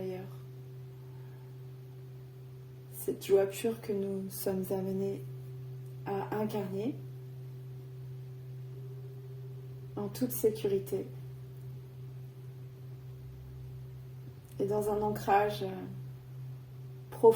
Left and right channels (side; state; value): both; identical; correlation 1.00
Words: Cette joie pure que nous sommes amenés à incarner en toute sécurité et dans un ancrage